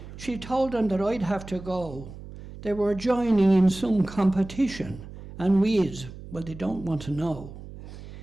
She told them that I'd have to go. They were joining in some competition, and weeds, well, they don't want to know.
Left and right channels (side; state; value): right; noise; hum, 14 dB below the sound